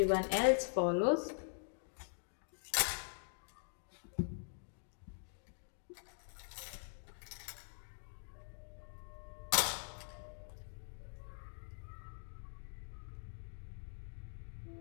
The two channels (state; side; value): silent; right; digital silence